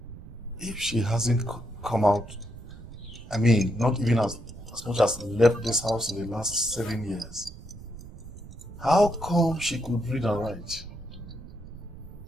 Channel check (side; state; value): right; noise; rumble, 15 dB below the sound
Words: If she hasn't come out, I mean, not even as much as left this house in the last 7 years, how come she could read and write?